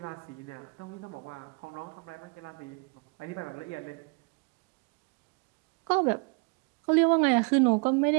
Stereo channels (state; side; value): quieter; left; 33.8 dB